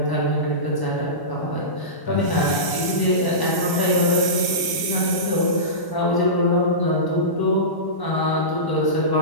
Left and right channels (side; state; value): right; late; 1.0 ms